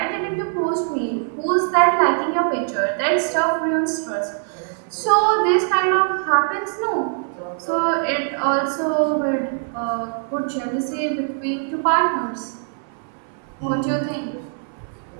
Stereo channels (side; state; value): left; silent; 61 dB below the other